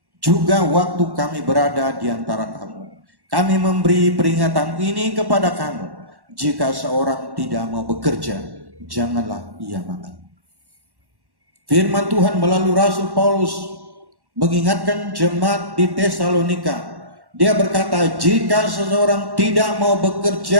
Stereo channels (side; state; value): left; late; 1.1 ms